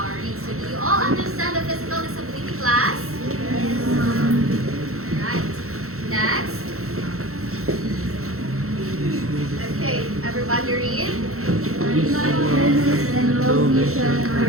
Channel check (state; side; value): late; left; 0.63 ms